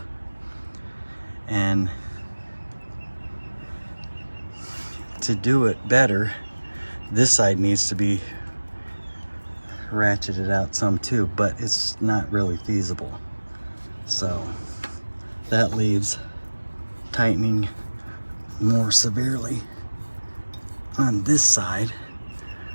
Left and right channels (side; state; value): both; inverted; correlation -1.00